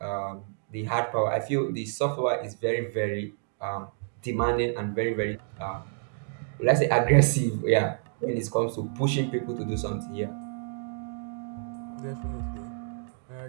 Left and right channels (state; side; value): silent; left; 59 dB below the other